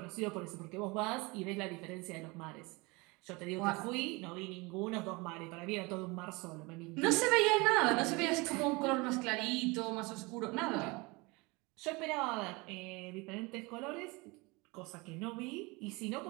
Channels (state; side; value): quieter; left; 25.6 dB